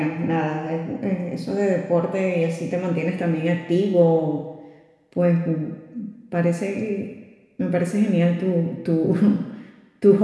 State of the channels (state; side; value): identical; both; correlation 1.00